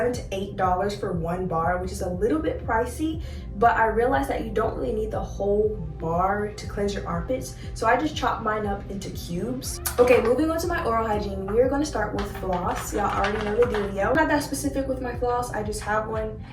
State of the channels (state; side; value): identical; both; correlation 1.00